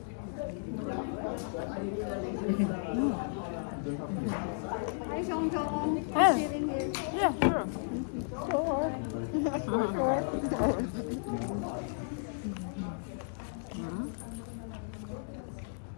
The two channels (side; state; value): right; silent; digital silence